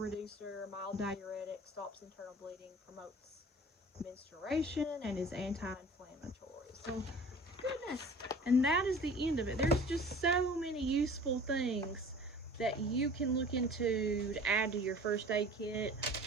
mild diuretic, stops internal bleeding, promotes menstruation, and is anti-inflammatory. So, goodness. And that is the end of it. There's just so many useful things that you can look into to add to your first aid kit,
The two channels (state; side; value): normal; both; correlation 0.44